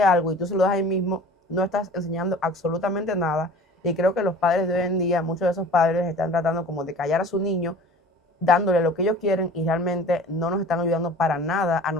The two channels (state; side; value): normal; both; correlation 0.43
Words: algo y tú se lo das ahí mismo, no estás enseñando absolutamente nada. Y creo que los padres de hoy en día, muchos de esos padres están tratando como de callar a su niño, dándole lo que ellos quieren y realmente no nos están ayudando para nada a